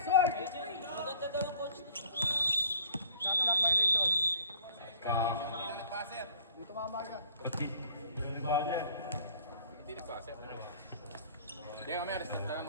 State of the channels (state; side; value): inverted; both; correlation -0.54